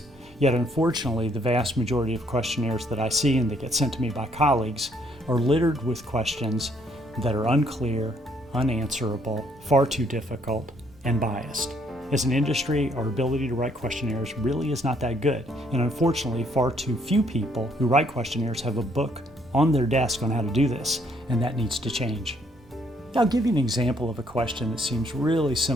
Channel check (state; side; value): normal; both; correlation 0.68